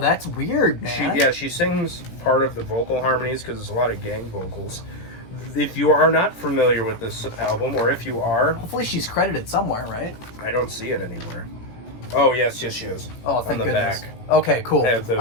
weird, man. She sings part of the vocal harmonies because there's a lot of gang vocals. If you are not familiar with this album, or if you are... Hopefully she's credited somewhere, right? I don't see it anywhere. Oh, yes, she is. Oh, thank on the goodness. back. Okay, cool. I was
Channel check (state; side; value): late; right; 18 ms